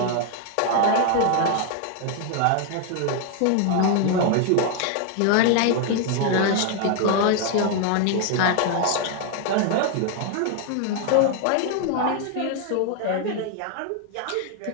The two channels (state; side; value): different; both; correlation 0.00